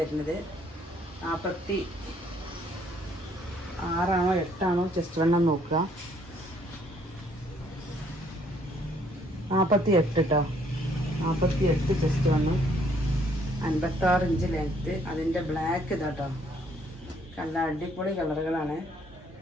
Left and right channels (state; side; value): normal; both; correlation 0.65